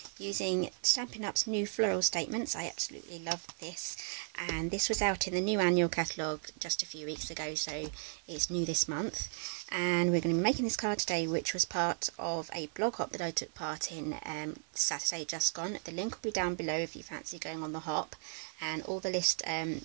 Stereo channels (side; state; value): left; silent; 54 dB below the other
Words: using Stampin' Up's new floral statements. I absolutely love this, and this was out in the new annual catalogue just a few weeks ago, so it's new this month. And we're going to be making this card today, which was part of a blog hop that I took part in Saturday just gone. The link will be down below if you fancy going on the hop, and all the list